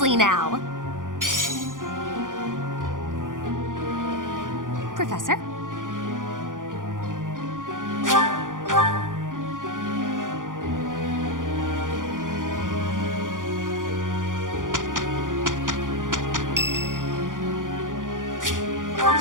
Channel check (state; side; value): late; left; 0.89 ms